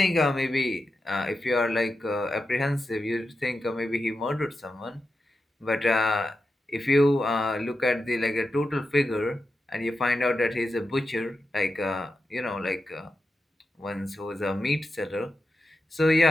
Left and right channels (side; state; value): both; normal; correlation 0.89